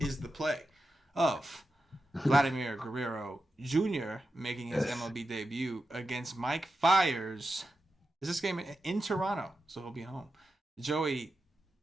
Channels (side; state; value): both; normal; correlation 0.90